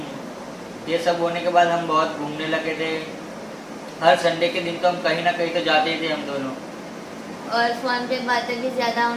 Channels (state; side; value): identical; both; correlation 1.00